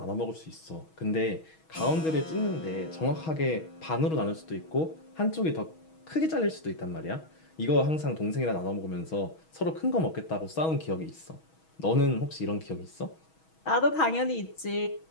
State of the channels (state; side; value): late; right; 6.3 ms